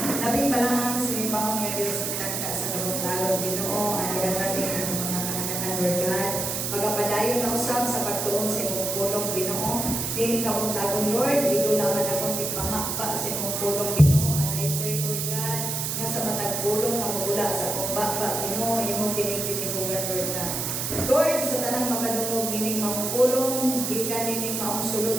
Labing balaan sa ibaw nga Diyos, itakda sa kabuntagon, Ginoo, anihan natin ang mga kahanakan, Lord God, pagapadayon na usab sa pagtuon sa imong pulong, Ginoo. Dili ka buntagon, Lord, ito naman akong tigpamakpa sa imong pulong, Ginoo. And I pray, Lord God, nga sa matag pulong na magula sa akong bakba, Ginoo, imong kinig-tinihugan, Lord God. Lord, sa tanang makadungog nining mga pulong, di ka nining maungsulod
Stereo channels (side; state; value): right; noise; hiss, 2 dB below the sound